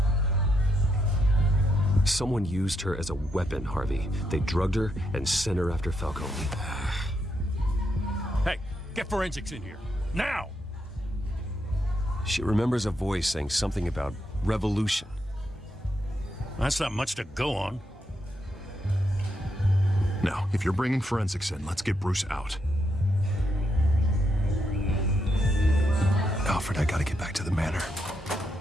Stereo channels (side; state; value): both; normal; correlation 0.80